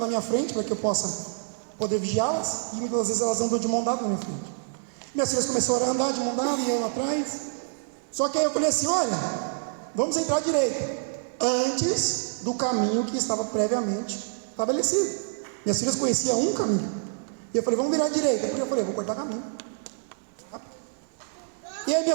minha frente, para que eu possa poder vigiá-las, e muitas vezes elas andam de mão dada na minha frente. Minhas filhas começaram a andar de mão dada, e eu atrás. Só que aí eu falei assim: olha, vamos entrar à direita, antes do caminho que estava previamente estabelecido. Minhas filhas conheciam um caminho, e eu falei: vamos virar à direita. Eu falei: vou cortar caminho. E aí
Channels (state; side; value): silent; left; digital silence